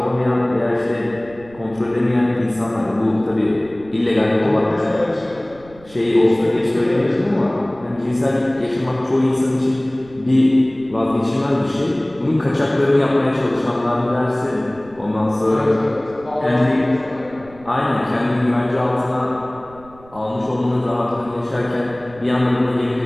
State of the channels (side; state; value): right; noise; rumble, 23 dB below the sound